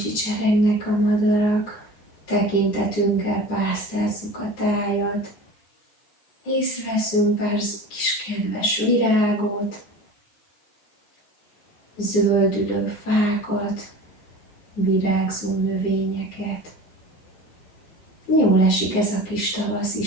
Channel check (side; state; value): right; late; 9.8 ms